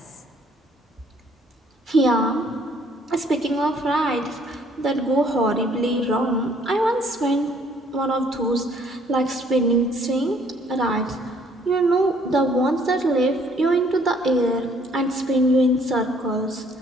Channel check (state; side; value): normal; both; correlation 0.62